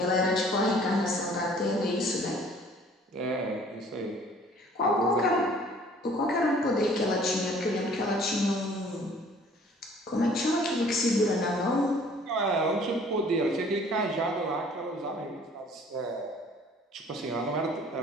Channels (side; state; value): both; normal; correlation 0.54